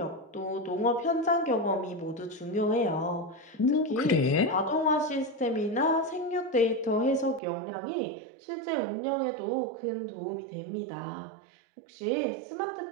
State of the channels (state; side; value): drops out; left; at 7.4 s